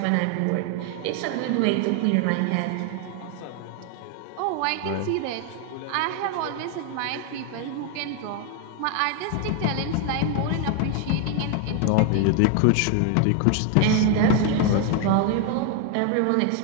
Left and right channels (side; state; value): both; different; correlation 0.01